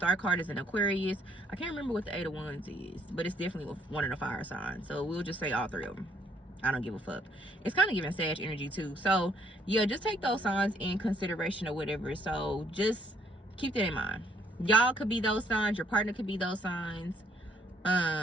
card is an Aquarius. I can't remember what the 8 of Wands is, but it's definitely one of the fire signs, so we'll just say all 3 of them. I don't give a fuck. It's kind of giving Sag energy too. So yeah, just take those signs in consideration or whatever. So just keep that in mind. Y'all could be those signs, your partner could be those signs.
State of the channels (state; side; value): normal; both; correlation 0.66